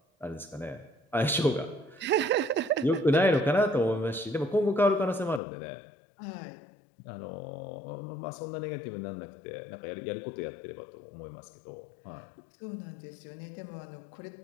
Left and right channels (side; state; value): right; drops out; at 5.4 s